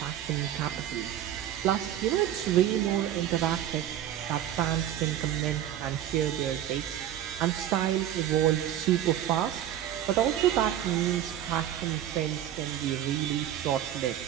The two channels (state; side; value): quieter; left; 11.5 dB